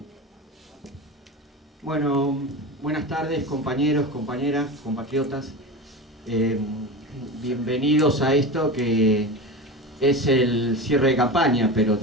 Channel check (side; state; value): both; normal; correlation 0.27